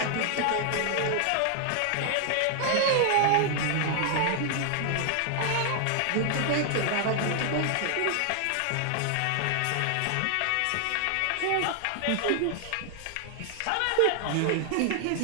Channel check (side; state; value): both; different; correlation 0.00